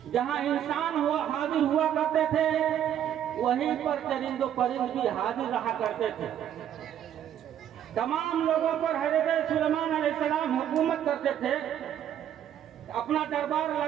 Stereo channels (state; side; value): quieter; left; 10.3 dB